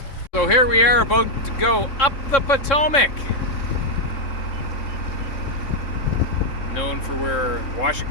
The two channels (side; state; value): right; late; 3.7 ms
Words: So here we are about to go up the Potomac. Known for where